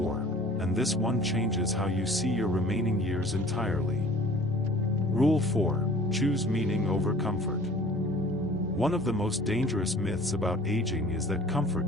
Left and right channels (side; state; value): both; normal; correlation 0.48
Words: and this one changes how you see your remaining years entirely. Rule 4, choose meaning over comfort. One of the most dangerous myths about aging is that comfort